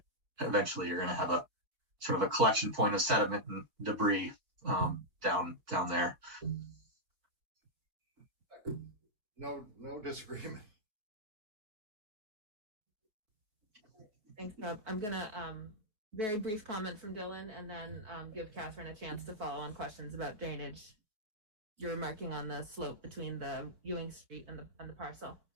eventually you're going to have a sort of a collection point of sediment and debris down there. No disagreement. Thanks, Bob. I'm gonna very brief comment from Dylan and then give Catherine a chance to follow on questions about drainage. You're marking on the slope between the Ewing Street and the parcel.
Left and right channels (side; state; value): left; late; 4.7 ms